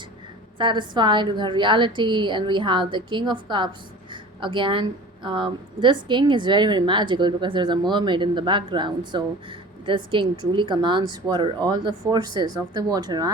satisfied with her reality. And we have the King of Cups again. This king is very magical because there's a mermaid in the background. So this king truly commands water. All the forces of the water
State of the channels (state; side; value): normal; both; correlation 0.40